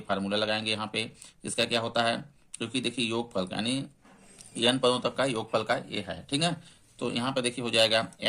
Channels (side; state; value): both; identical; correlation 1.00